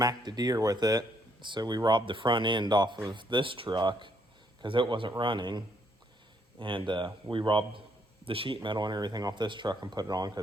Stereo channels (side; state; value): both; normal; correlation 0.71